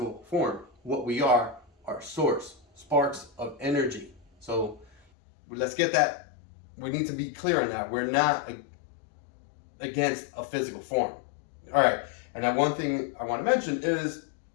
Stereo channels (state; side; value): drops out; right; at 5.0 s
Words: form. What we are source, sparks of energy. So let's get that. We need to be clear on that. We're not against a physical form. All right. And now one thing I want to mention is